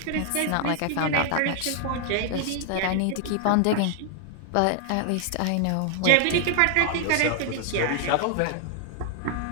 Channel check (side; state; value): both; different; correlation 0.00